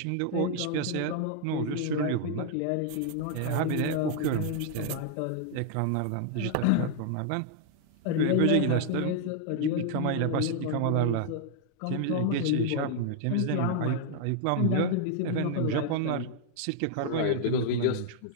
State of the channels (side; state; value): both; different; correlation -0.01